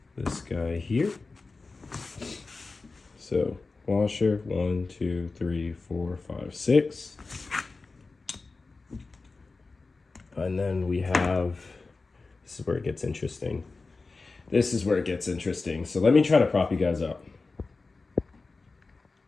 This guy here. So washer, 1, 2, 3, 4, 5, 6. And then we have, this is where it gets interesting. This is where it gets interesting. So let me try to prop you guys up.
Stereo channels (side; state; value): right; quieter; 3.9 dB